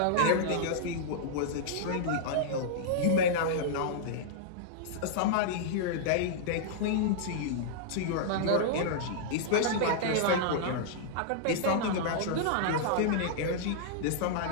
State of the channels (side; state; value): both; different; correlation -0.02